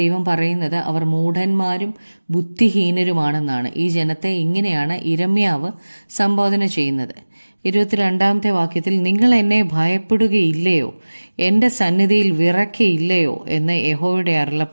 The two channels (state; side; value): inverted; both; correlation -1.00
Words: പറയുന്നത് അവർ മൂഢന്മാരും ബുദ്ധിഹീനരുമാണെന്നാണ്. ഈ ജനത്തെ ഇങ്ങനെയാണ് യിരെമ്യാവ് സംബോധന ചെയ്യുന്നത്. 22-ാമത്തെ വാക്യത്തിൽ, നിങ്ങൾ എന്നെ ഭയപ്പെടുകയില്ലയോ, എൻ്റെ സന്നിധിയിൽ വിറയ്ക്കയില്ലയോ എന്ന് യഹോവയുടെ